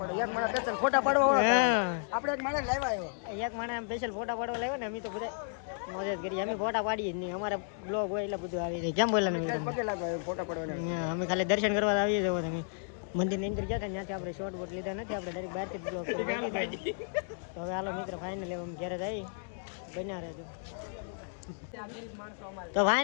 એક માણસ સ્પેશિયલ ફોટા પાડવા આપણે એક માણસ લાવ્યા આવ્યો એક માણસ સ્પેશિયલ ફોટા પાડવા લાવ્યો ને. અમે તો બધા મોજ જ કરીએ. અમે ફોટા પાડીએ જ નહીં. અમારા બ્લોગ હોય એટલે બધું આવી જાય. કેમ બોલે ફોટા પાડવા અમે ખાલી દર્શન કરવા આવીએ જવો. તમે મંદિર ની અંદર ગયા હતા ત્યાંથી આપણે શોર્ટ બોટ લીધા નથી. આપણે ડાયરેક્ટ બહારથી બ્લોગ કરી તો હવે હાલો મિત્ર ફાઇનલી અમે ઘરે જઈ બન્યા રહેજો. તો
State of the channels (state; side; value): silent; right; digital silence